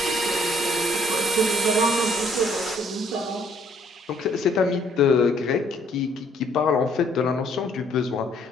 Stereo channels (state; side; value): normal; both; correlation 0.63